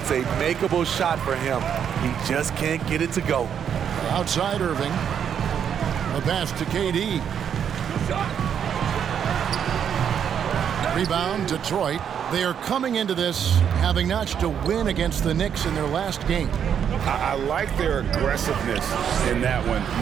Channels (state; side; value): quieter; left; 8.3 dB